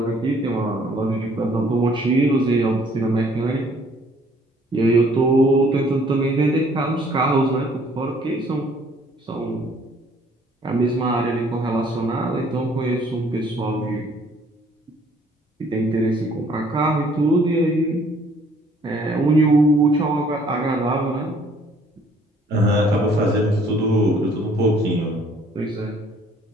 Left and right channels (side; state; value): both; normal; correlation 0.60